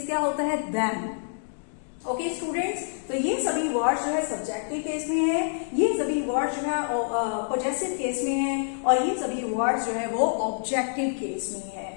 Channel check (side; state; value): right; silent; digital silence